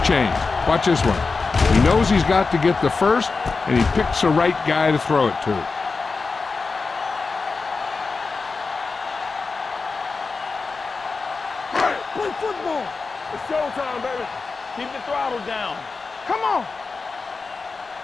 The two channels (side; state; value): right; quieter; 4.3 dB